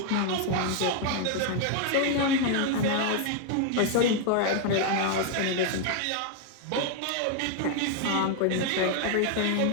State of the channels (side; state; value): both; different; correlation 0.00